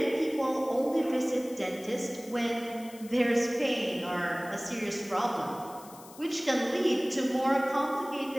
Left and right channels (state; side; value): noise; left; hiss, 20 dB below the sound